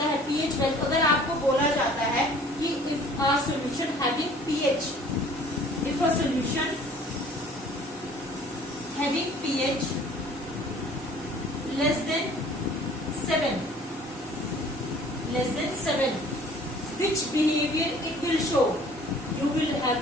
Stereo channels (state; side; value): normal; both; correlation 0.52